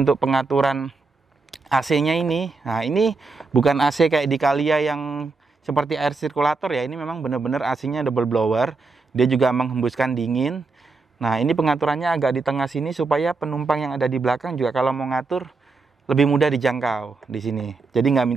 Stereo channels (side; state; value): left; quieter; 4.0 dB